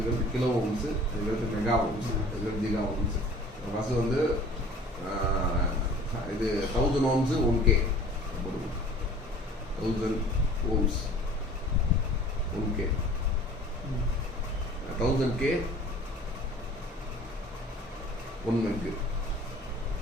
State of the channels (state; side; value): normal; both; correlation 0.47